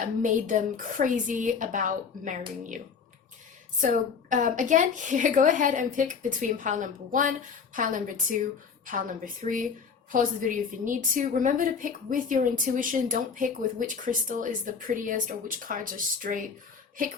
made them crazy about marrying you. So again, here, go ahead and pick between pile number 1, pile number 2, pile number 3. Pause the video if you need to. Remember to pick with your intuition. Don't pick with which crystal is the prettiest or which cards are straight.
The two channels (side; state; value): right; quieter; 5.9 dB